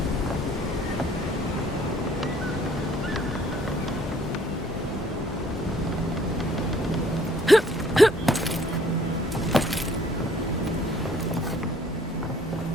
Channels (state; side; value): normal; both; correlation 0.59